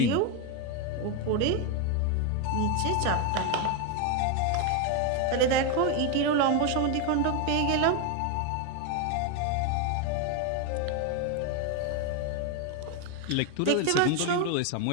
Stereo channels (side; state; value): both; different; correlation 0.01